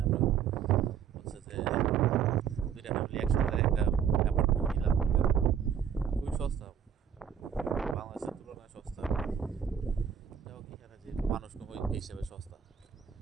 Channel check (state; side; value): quieter; left; 8.1 dB